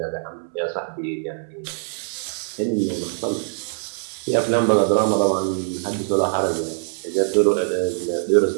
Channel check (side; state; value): left; silent; 64 dB below the other